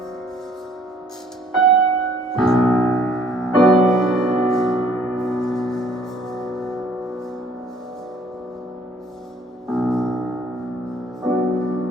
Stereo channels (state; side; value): normal; both; correlation 0.59